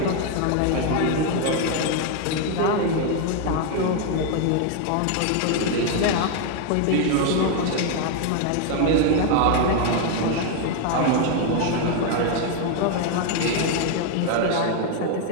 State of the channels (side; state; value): both; different; correlation 0.01